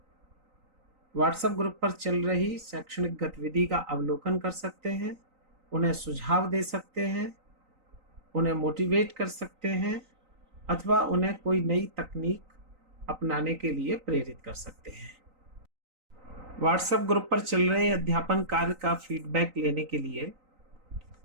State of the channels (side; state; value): left; late; 3.9 ms